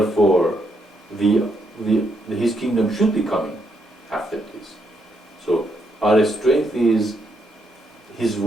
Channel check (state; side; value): normal; both; correlation 0.77